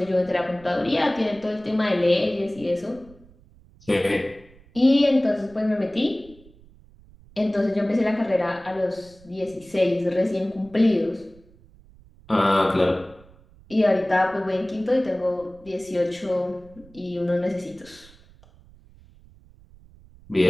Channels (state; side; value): noise; right; rumble, 25 dB below the sound